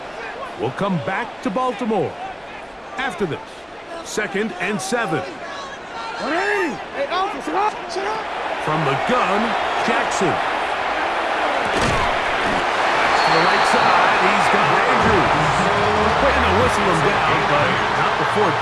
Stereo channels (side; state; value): both; identical; correlation 1.00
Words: We'll come back to Baltimore after this. 2nd and 7. From the gun, Jackson. To the right side, he's got Andrews. Trying to whistle him down, but not before he